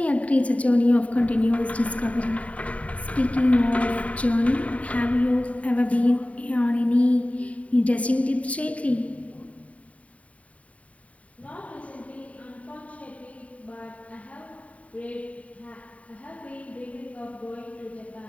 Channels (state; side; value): late; right; 0.067 ms